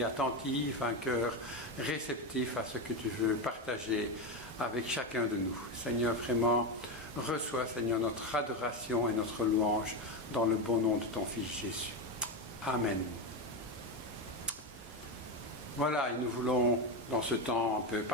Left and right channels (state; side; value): normal; both; correlation 0.14